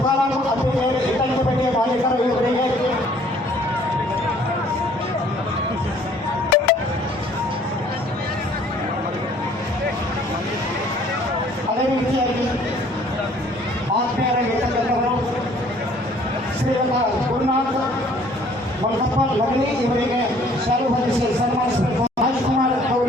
ಮುತ್ತಪ್ಪ ಲಗಲಿ ಇವರಿಗೆ ಶಾಲು ಹೊದಿಸಿ ಸನ್ಮಾನಿಸಬೇಕು. ರಾಜ್ಕುಮಾರ್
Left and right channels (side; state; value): both; normal; correlation 0.57